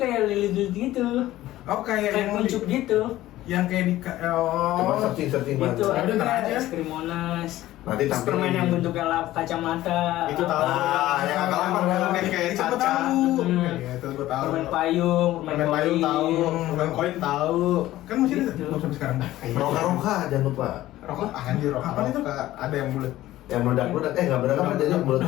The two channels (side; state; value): right; quieter; 15.3 dB